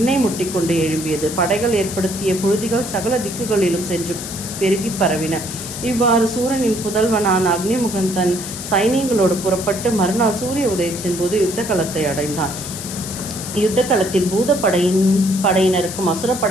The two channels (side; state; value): left; noise; hiss, 8 dB below the sound